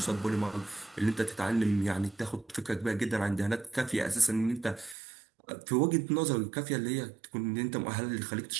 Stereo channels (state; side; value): drops out; left; at 5.0 s